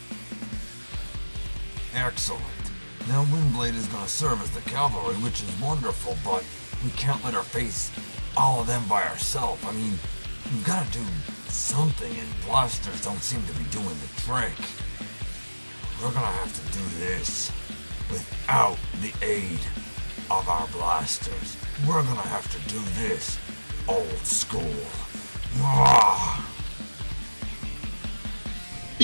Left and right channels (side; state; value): both; inverted; correlation -1.00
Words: Excellent. Now Windblade is going to serve as the cavalry, which is wonderful, but we can't let her face all of them by ourselves. I mean, we've got to do something, and blasters don't seem to be doing the trick. We're going to have to do this without the aid of our blasters. We're going to have to do this old school. Ah.